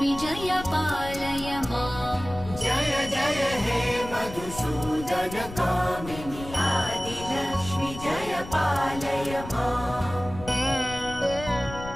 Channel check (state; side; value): noise; left; rumble, 12 dB below the sound